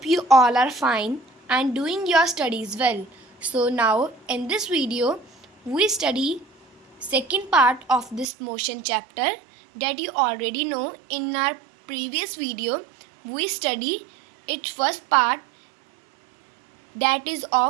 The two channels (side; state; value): left; drops out; at 8.2 s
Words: you all are fine and doing your studies well. So now in this video, we study second part of this motion chapter that you already know. In our previous video, we study its first part, that is